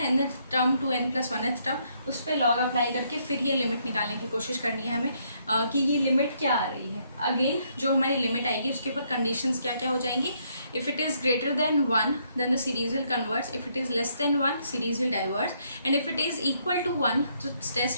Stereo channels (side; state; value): both; inverted; correlation -0.72